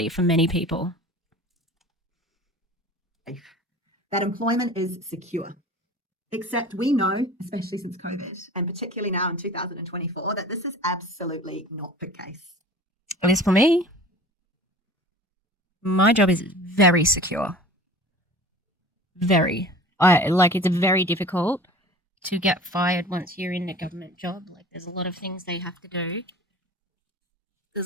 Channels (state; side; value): normal; both; correlation 0.41